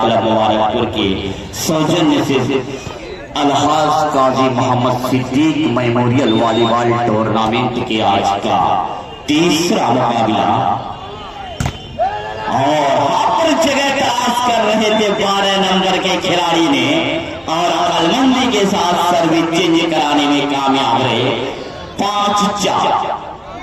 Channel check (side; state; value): both; identical; correlation 1.00